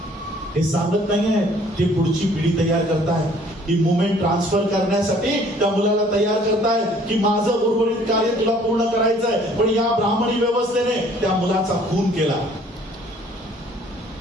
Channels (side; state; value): both; normal; correlation 0.57